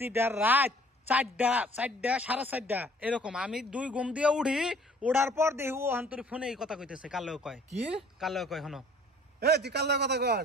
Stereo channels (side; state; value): both; normal; correlation 0.55